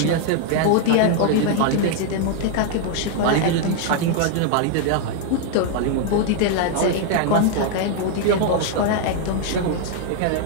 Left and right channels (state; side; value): different; both; correlation 0.00